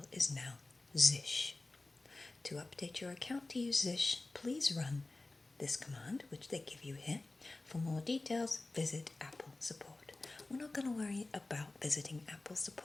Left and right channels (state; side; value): quieter; right; 3.1 dB